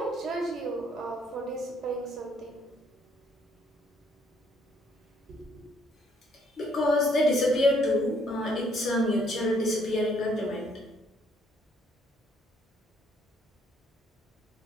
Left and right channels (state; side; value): normal; both; correlation 0.67